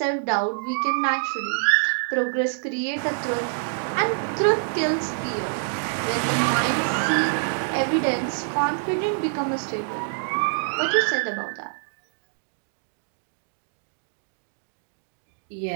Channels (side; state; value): left; silent; digital silence